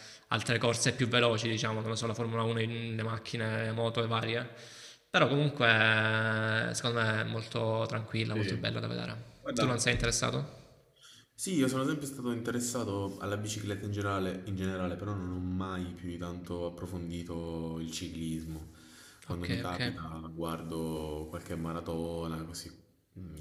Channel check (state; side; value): identical; both; correlation 1.00